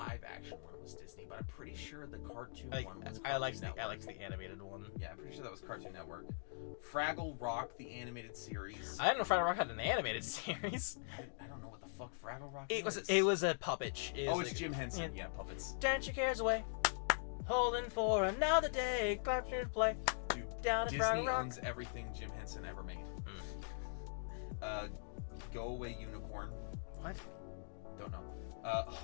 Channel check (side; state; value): right; silent; digital silence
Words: action one was Disney, but I'm pretty sure the cartoon one was I Cartoon liked Network. I liked the animated one. Yeah, I'm pretty sure that was Cartoon Network. Fraggle Rock, the animated series. I didn't know Fraggle Rock had an animated series. I don't know what the fuck Fraggle Rock It is. was a puppet. It's Jim Henson. Yeah, puppets. Dance your cares away. Holding for another day. Clap to play. Dude, Down Disney owns everything Jim Henson ever made. Go Away Unicorn. What? Don't know.